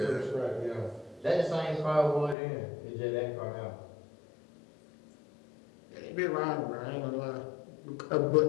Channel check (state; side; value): drops out; right; at 2.4 s